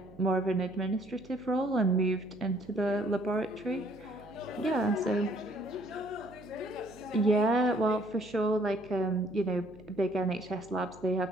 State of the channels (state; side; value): noise; right; hum, 21 dB below the sound